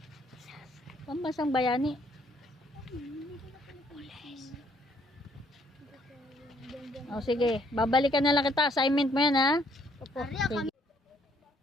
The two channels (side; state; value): both; normal; correlation 0.66